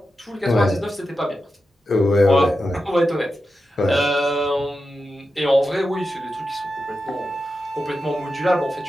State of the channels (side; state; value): both; normal; correlation 0.90